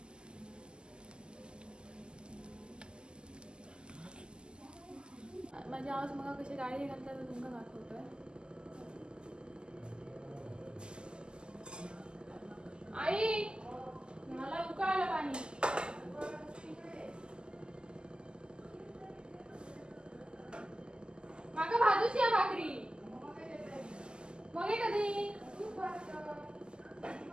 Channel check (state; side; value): late; left; 0.048 ms